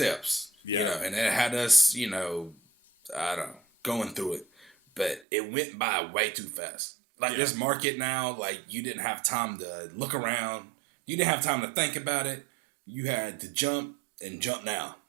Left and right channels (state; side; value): drops out; left; at 5.2 s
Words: and it had us, I don't know, going through it, but it went by way too fast. Like this market now, like you didn't have time to look around. You didn't have time to think about it. You had to jump now.